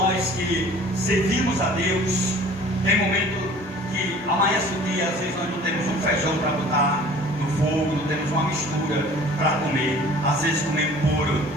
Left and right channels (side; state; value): both; normal; correlation 0.48